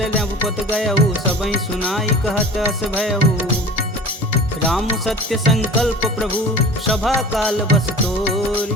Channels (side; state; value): both; normal; correlation 0.40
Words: नवपत गयहु, सबहि सुनाई कहत अस भयहु। राम सत्य संकल्प प्रभु, सभा काल बस